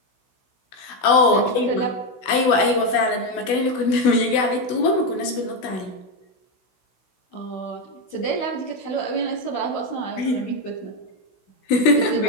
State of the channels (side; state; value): right; late; 16 ms